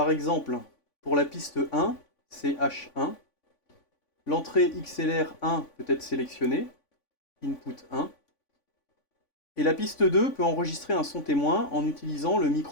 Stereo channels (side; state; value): right; late; 3.5 ms